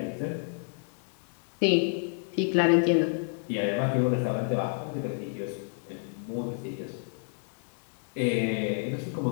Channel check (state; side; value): silent; right; digital silence